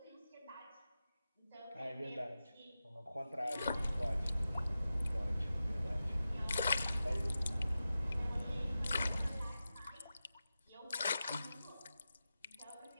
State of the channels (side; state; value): both; inverted; correlation -0.93